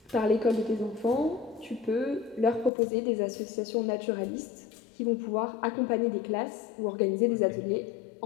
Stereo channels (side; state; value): right; drops out; at 2.7 s